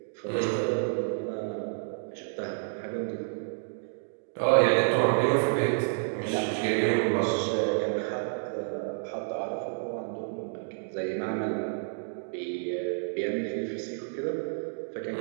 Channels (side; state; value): left; silent; digital silence